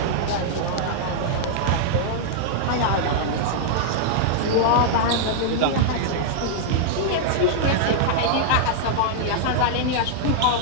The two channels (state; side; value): different; both; correlation -0.01